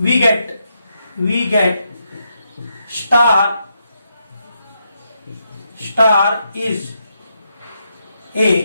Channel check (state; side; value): inverted; both; correlation -0.81